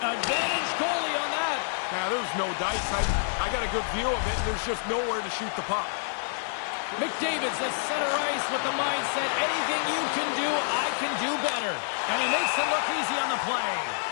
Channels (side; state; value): right; silent; digital silence